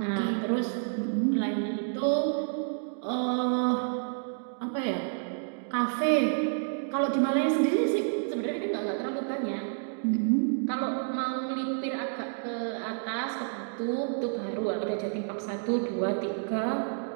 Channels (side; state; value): left; silent; digital silence